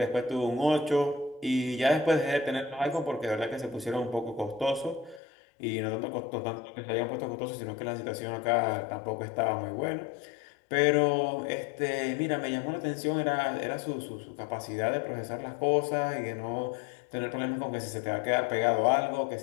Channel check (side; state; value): right; drops out; at 5.2 s